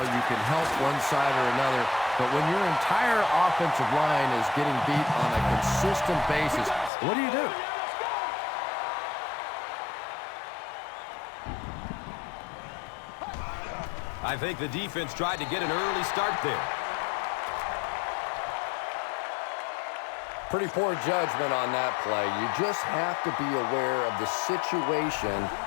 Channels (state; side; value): drops out; right; at 6.9 s